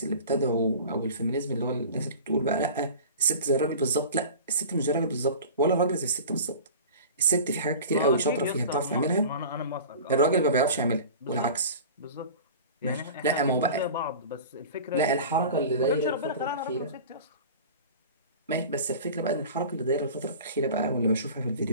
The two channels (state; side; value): inverted; both; correlation -0.38